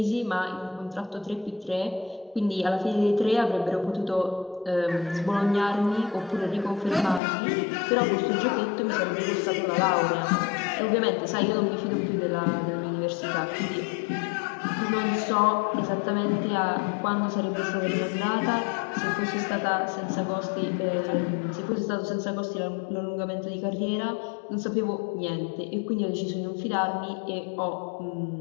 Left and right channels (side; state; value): right; drops out; at 7.2 s